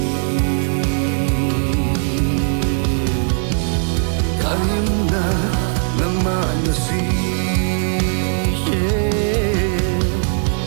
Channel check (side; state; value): left; silent; 66 dB below the other